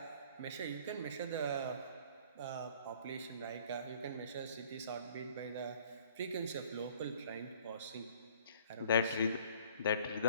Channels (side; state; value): both; inverted; correlation -0.54